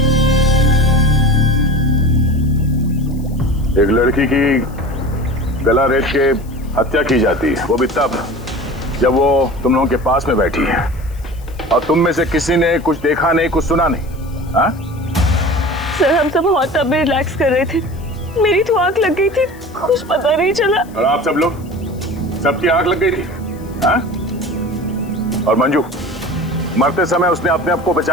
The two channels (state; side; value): noise; left; hiss, 26 dB below the sound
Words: एक लड़की की गला रेत के हत्या की जाती है, वो भी तब जब वो तुम लोगों के पास में बैठी है और तुम में से किसी ने कुछ देखा नहीं, कुछ सुना नहीं। हाँ? सर, हम सब होटल में रिलैक्स कर रहे थे, मेरी तो आंख लग गई थी, कुछ पता नहीं चला। और आप सब लोग, सबकी आंख लग गई थी? हाँ? और मंजू, मरते समय उसने अपने आप को